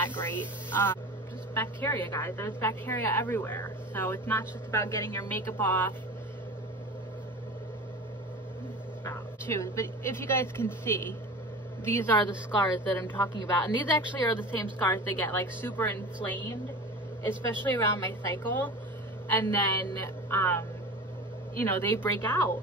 great. Just bacteria, guys. There's bacteria everywhere. So it's not just about getting your makeup off. But if you guys can see, these are the scars that I'm talking about. And these actually are the same scars that get like super inflamed, especially around my cycle. And then, you know, they break out.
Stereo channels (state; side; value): normal; both; correlation 0.34